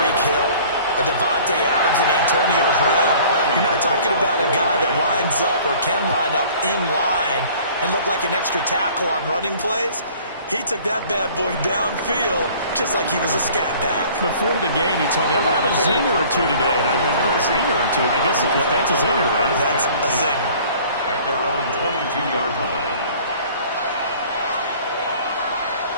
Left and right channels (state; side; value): inverted; both; correlation -0.50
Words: Hill, a Devontae Adams, and Antonio Brown. You're not talking about a guy that lines up or can line up in line and look like an extra tackle on running plays. He took that bad boy downfield just like he was a scat back. Before the game, he told me, I'm going to have a zinger or two today. And I was like, oh, a zinger or two? I guess that's a zinger, right? That's a zinger. At their own 22-yard line.